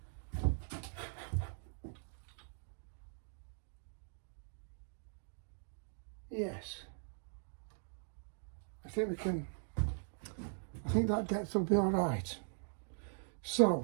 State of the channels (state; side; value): silent; left; digital silence